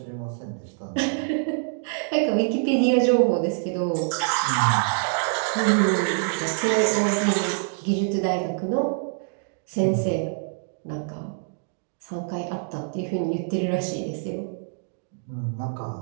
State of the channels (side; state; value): left; silent; 61 dB below the other